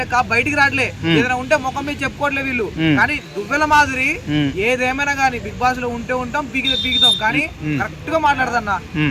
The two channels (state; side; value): identical; both; correlation 1.00